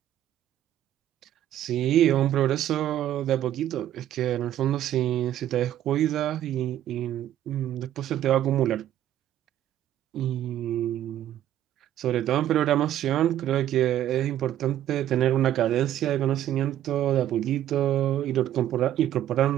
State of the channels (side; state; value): left; quieter; 12.1 dB